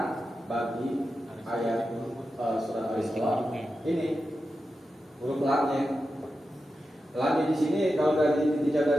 bagi ayat surat Al-Isra. Ini huruf lamnya. Lamnya di sini kalau dari dijaga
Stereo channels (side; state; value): both; normal; correlation 0.90